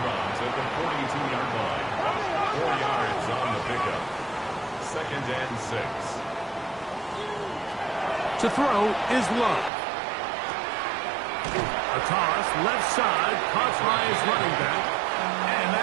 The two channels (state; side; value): drops out; left; at 9.7 s